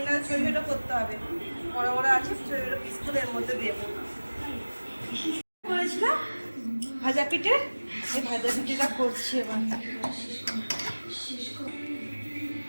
ছোটো ছোটো করতে হবে, বড় বড় আছে, ছোটো ছোটো পিস করে এর মধ্যে দেবো। করেছিলাম ভাজা পিঠে, এই ভাজা পিঠেটা করছি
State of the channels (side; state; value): both; inverted; correlation -1.00